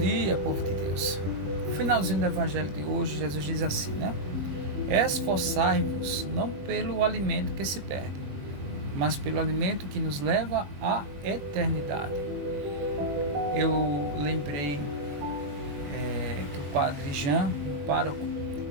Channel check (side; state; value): left; late; 21 ms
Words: povo de Deus. No finalzinho do evangelho de hoje, Jesus diz assim, né? Esforçai-vos não pelo alimento que se perde, mas pelo alimento que nos leva à eternidade. Eu lembrei que o padre Jean, o pároco,